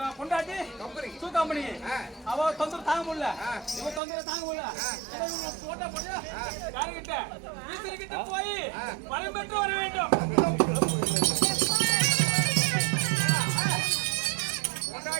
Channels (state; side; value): drops out; left; at 4.0 s